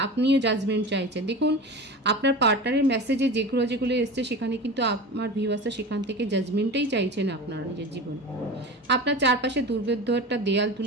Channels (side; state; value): both; normal; correlation 0.30